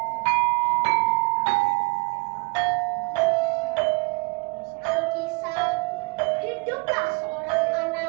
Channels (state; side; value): quieter; left; 30.6 dB